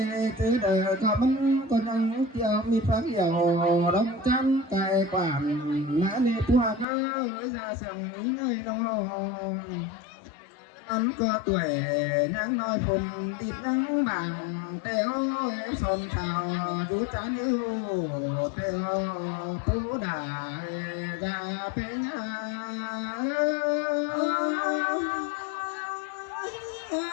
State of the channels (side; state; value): right; drops out; at 6.9 s